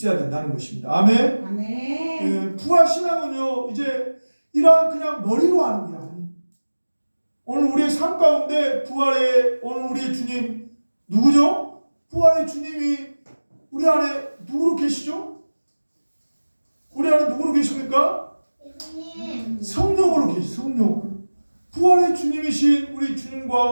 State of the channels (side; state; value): both; inverted; correlation -1.00